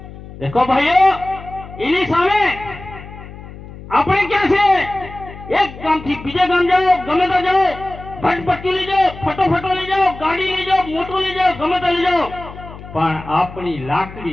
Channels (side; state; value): left; noise; hum, 15 dB below the sound